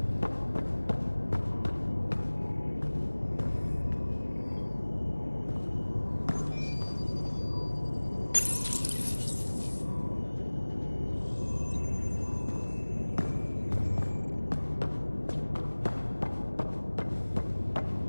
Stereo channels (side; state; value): both; inverted; correlation -1.00